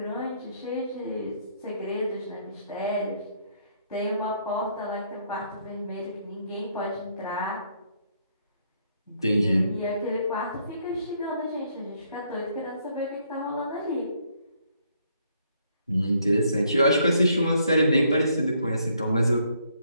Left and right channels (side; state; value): both; inverted; correlation -0.70